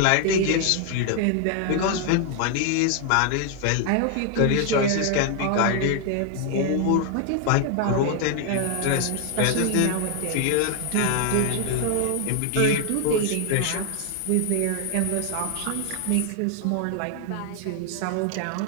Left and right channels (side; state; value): both; different; correlation 0.00